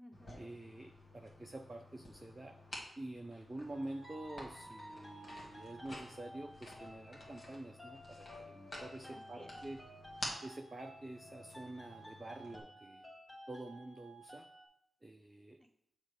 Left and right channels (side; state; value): both; normal; correlation 0.94